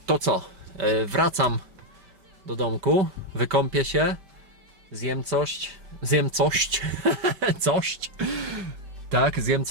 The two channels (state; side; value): late; left; 5.2 ms